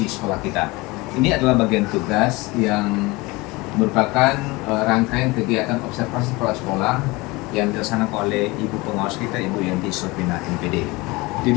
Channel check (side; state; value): right; quieter; 23.2 dB